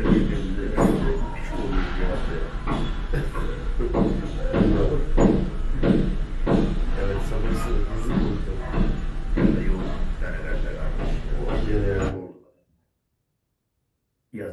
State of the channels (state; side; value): identical; both; correlation 1.00